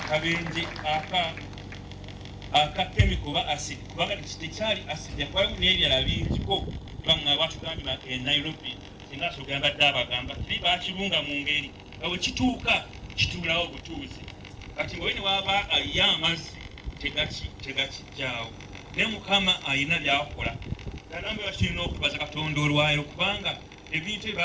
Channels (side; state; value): both; identical; correlation 1.00